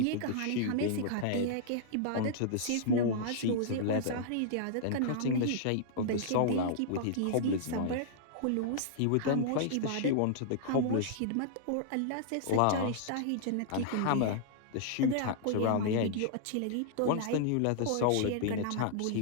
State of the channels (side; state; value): both; different; correlation -0.01